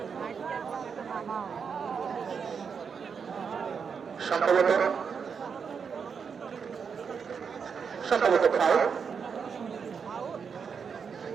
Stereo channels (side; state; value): left; quieter; 6.2 dB